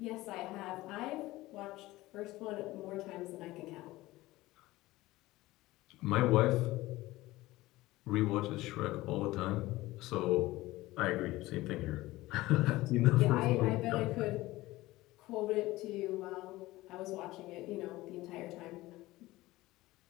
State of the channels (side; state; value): right; quieter; 18.4 dB